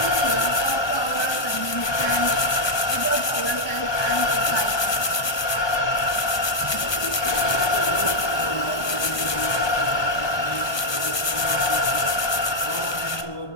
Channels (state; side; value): late; right; 1.2 ms